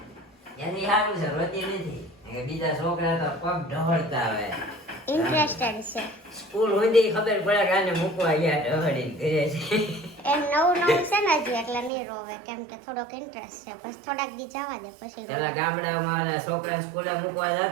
એની સારું છે, રોતી નથી. બીજા છોકરા તો પગ ઢહળતા આવે. ઇન્ટરેસ્ટેડ છે. સ્કૂલ સુધી ખબર પડે કે આને મૂકવા ગયા ઢહળીને ઘરે છે. એમ નવું છે ને હજી, એટલે નહીં રોવે કેમ કે થોડોક ઇન્ટરેસ્ટ છે. બસ થોડાક દી જવા દે પછી. પેલા ગામડામાં છોકરા સ્કૂલે મૂકવા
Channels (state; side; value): drops out; left; at 11.9 s